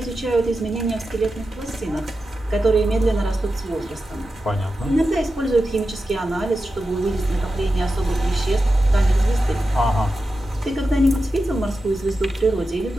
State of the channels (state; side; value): normal; both; correlation 0.91